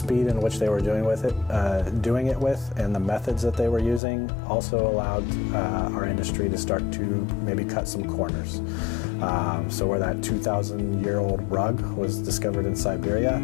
in which they were doing it with, and the methods that they were using also allowed our industry to start to maybe cut some corners. So where that 2,000-year-old rug was discovered in Siberia,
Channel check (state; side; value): drops out; right; at 4.0 s